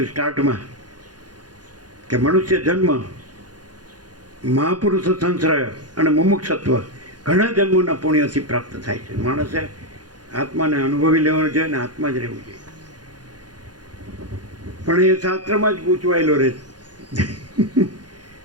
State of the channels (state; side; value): late; left; 0.69 ms